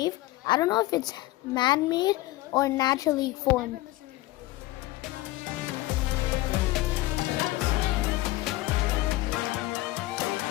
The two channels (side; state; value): right; quieter; 18.0 dB